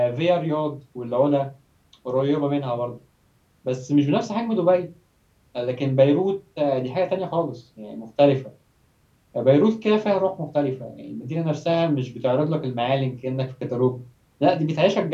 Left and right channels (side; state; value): both; identical; correlation 1.00